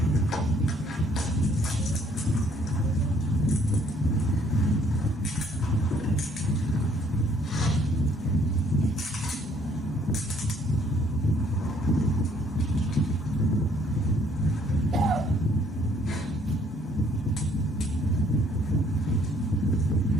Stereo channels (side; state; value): both; normal; correlation 0.63